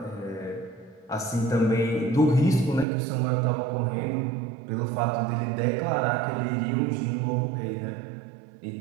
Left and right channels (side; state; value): left; drops out; at 2.9 s